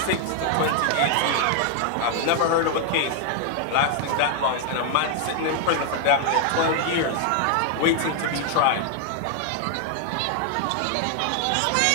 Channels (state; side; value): different; both; correlation 0.00